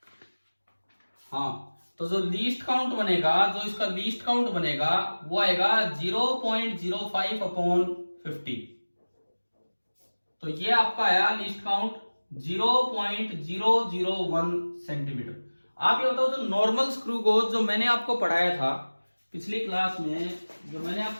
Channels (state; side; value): inverted; both; correlation -1.00